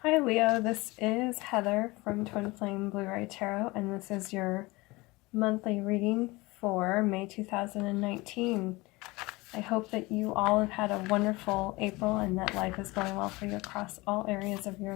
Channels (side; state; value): right; quieter; 22.6 dB